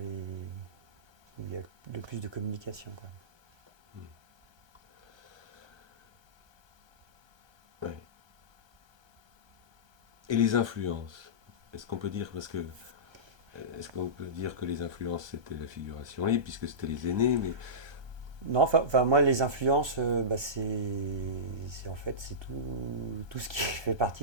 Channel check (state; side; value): late; left; 1.3 ms